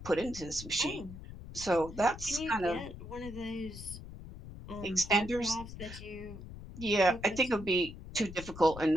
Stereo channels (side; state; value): left; noise; rumble, 13 dB below the sound